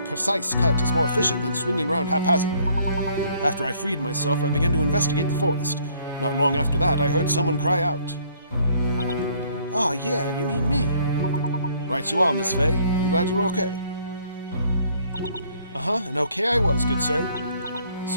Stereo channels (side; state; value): both; inverted; correlation -0.62